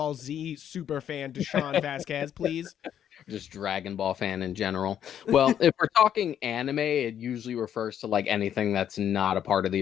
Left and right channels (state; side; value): quieter; right; 9.7 dB